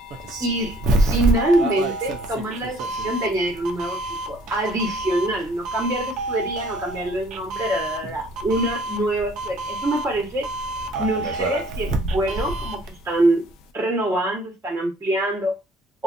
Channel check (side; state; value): both; normal; correlation 0.58